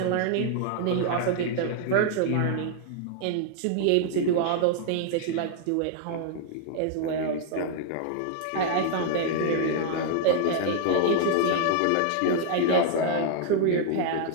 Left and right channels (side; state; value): both; different; correlation 0.00